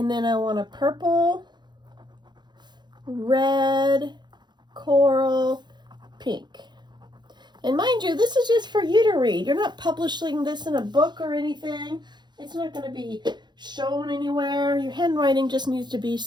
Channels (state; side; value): late; left; 0.21 ms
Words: then I want a purple, red, coral, pink. And mind you, this is just for you to read. You're not publishing this in a book or anything. It's not going to be shown anywhere. Your handwriting just needs to be